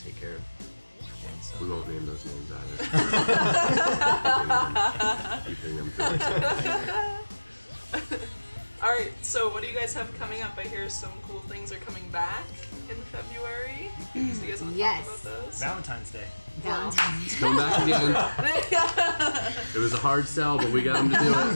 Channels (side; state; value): both; inverted; correlation -1.00